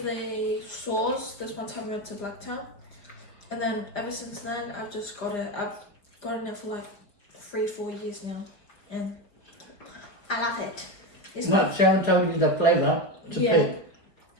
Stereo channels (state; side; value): late; right; 5.1 ms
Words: sauce this one time we went to Blacktown. And then ever since then, I've just got it. I've gotten it for like 3-4 years now. And I love it. It's What, Sharon told you the flavor to Yeah. pick.